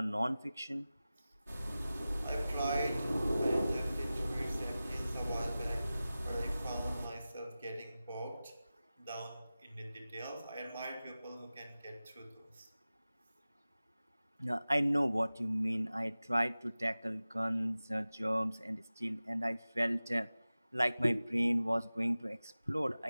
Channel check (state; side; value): inverted; both; correlation -0.96